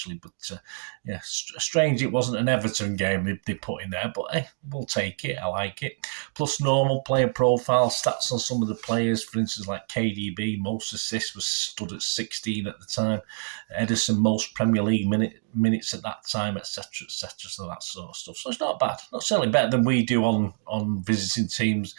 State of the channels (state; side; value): silent; left; digital silence